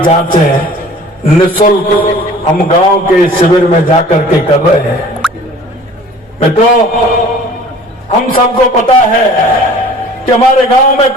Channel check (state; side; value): normal; both; correlation 0.47